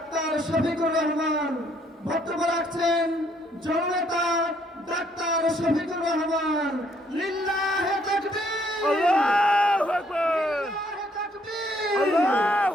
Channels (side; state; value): both; normal; correlation 0.67